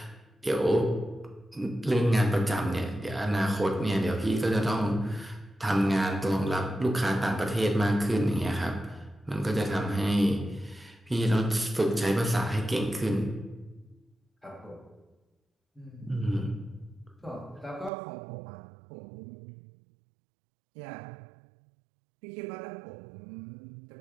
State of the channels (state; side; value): drops out; left; at 17.9 s